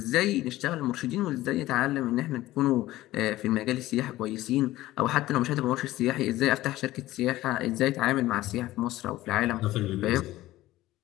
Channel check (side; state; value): right; quieter; 16.3 dB